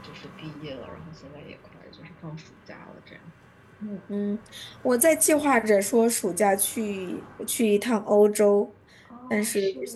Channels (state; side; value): identical; both; correlation 1.00